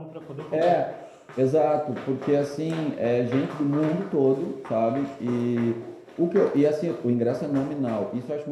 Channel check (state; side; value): identical; both; correlation 1.00